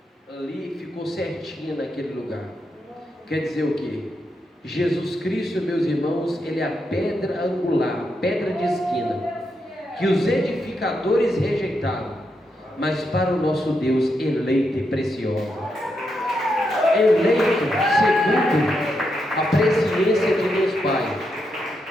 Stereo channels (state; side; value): normal; both; correlation 0.83